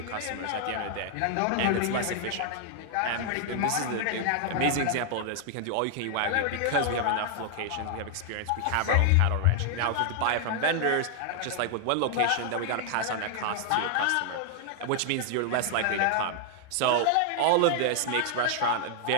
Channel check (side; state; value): both; different; correlation 0.00